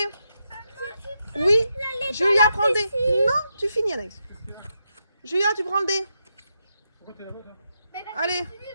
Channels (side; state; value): both; inverted; correlation -0.84